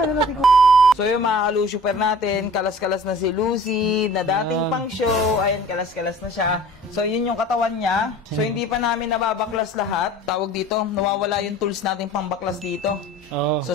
natin kukunin. So yung mga kalusuper natin, kalas-kalas na si Lucy, na dating pang show, ayan, kalas-kalas na siya. So yun yung katawan niya. So hindi pa namin nababaklas lahat. Tawag dito, nawawala yung tools natin pang baklas dito. So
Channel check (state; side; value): normal; both; correlation 0.46